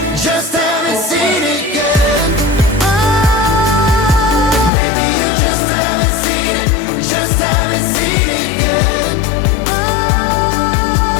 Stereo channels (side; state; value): right; drops out; at 4.7 s